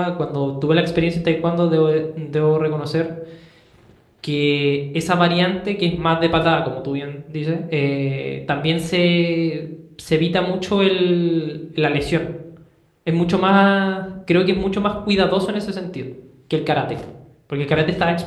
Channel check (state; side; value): identical; both; correlation 1.00